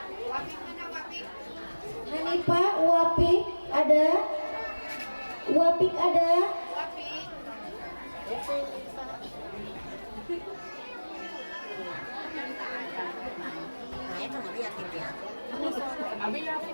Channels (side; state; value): both; inverted; correlation -1.00